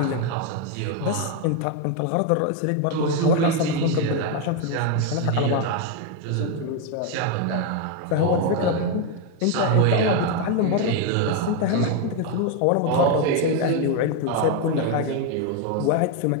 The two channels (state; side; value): different; both; correlation 0.02